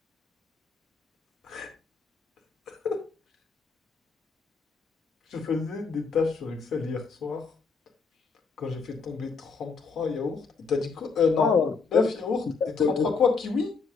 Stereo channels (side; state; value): right; quieter; 4.8 dB